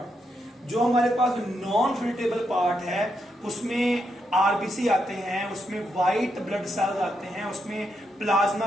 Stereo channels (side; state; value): both; normal; correlation 0.81